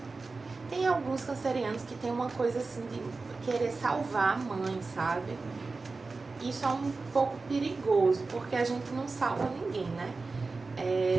Tem alguns cancerianos que tem uma coisa assim de querer salvar a mãe, sabe? Isso é um pouco perigoso, porque a gente não salva ninguém, né?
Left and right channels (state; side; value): quieter; left; 3.9 dB